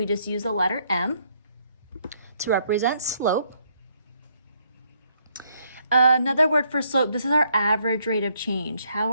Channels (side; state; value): both; inverted; correlation -0.71